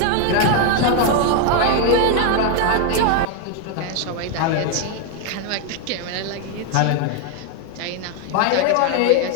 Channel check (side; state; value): both; different; correlation 0.01